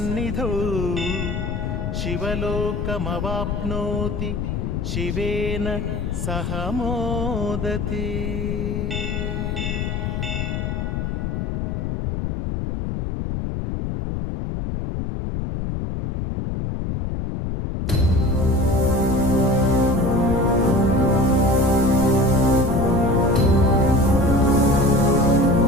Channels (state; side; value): noise; left; rumble, 3 dB below the sound